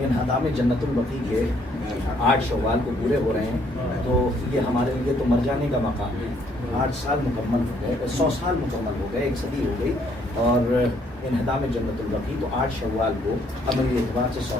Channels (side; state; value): both; normal; correlation 0.67